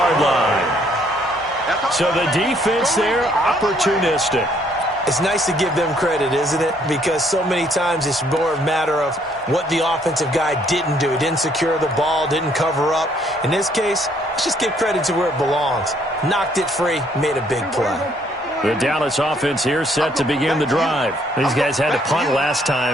line. So the defense there, opportunistic. It's nice to give them credit, isn't it? Because so many times it's more a matter of what the offensive guy didn't do. He didn't secure the ball, didn't cover up. In this case, let's just give credit to where it belongs. Knocked it free, made a big play. The Dallas offense here set to begin the drive. These guys had to punt last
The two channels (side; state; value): both; normal; correlation 0.66